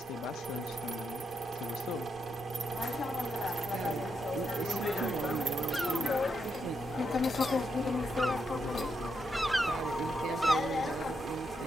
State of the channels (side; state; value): both; normal; correlation 0.81